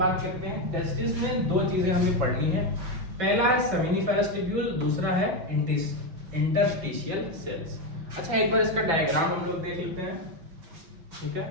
करते हैं। टेस्टिस में 2 चीजें हमें पढ़नी है। पहला है सेमिनिफेरस ट्यूब्यूल, दूसरा है इंटरस्टिशियल सेल्स। अच्छा एक बार इसका डायग्राम हम लोग देख लेते हैं, ठीक है।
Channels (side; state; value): left; late; 6.0 ms